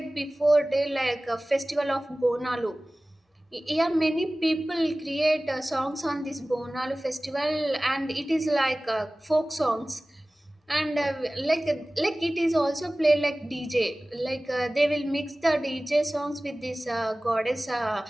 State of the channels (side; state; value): both; normal; correlation 0.98